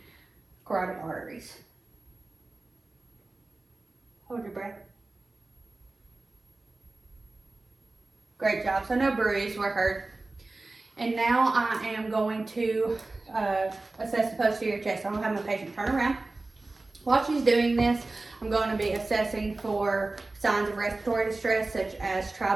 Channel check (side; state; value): left; quieter; 3.2 dB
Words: carotid arteries. Hold your breath. Great job. So no bruise were heard. And now I am going to assess the posterior chest. I'm going to have my patient turn around. While she's doing this, I'm going to be assessing for signs of respiratory distress, such as